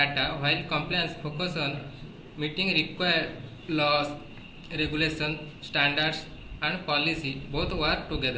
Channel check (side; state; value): both; identical; correlation 1.00